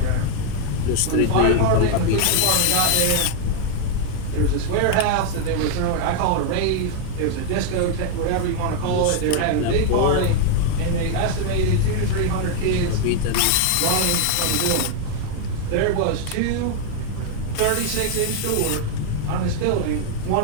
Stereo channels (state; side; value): different; both; correlation 0.00